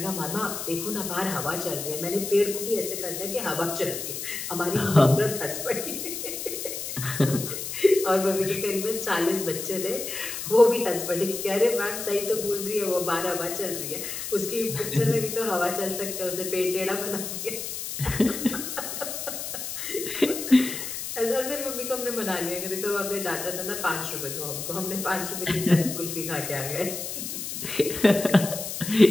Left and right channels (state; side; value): noise; left; hiss, 6 dB below the sound